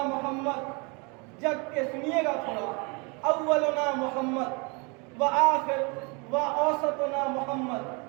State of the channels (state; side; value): quieter; left; 31.0 dB